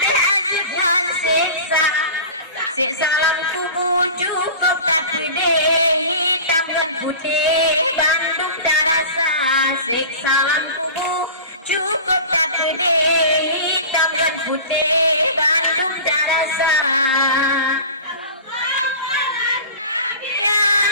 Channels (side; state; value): both; inverted; correlation -0.36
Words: ajukan siksa siksa dalam tubuh cukup tak gede hitam dan putih Bandung terasa siksa dalam tubuh cukup tak gede hitam dan putih Bandung terasa. Ya